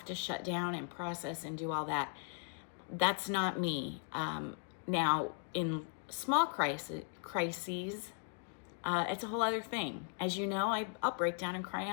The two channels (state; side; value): silent; right; 53 dB below the other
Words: to shut down and process and do all that. That's not me. Now, in small crises, it's a whole other thing. As you know, I'll break down and cry